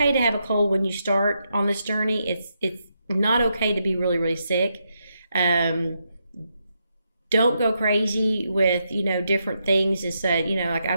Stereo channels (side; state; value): both; inverted; correlation -0.82